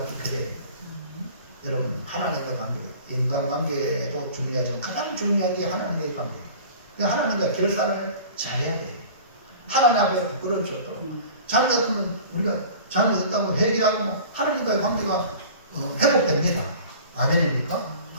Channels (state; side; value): inverted; both; correlation -0.42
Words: 깨끗해요. 여러분, 하나님과의 관계, 인간관계도 중요하지만 가장 중요한 게 하나님과의 관계. 하나님과 결산을 잘해야 돼요. 하나님 앞에 부끄러워져. 잘못했으면 우리가 잘못했다고 회개하고 하나님과의 관계가 회복됩니다. 아멘입니까?